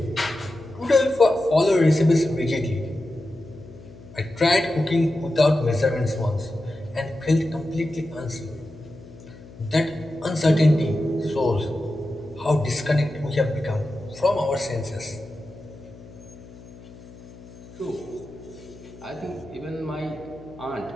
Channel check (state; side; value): noise; left; hum, 19 dB below the sound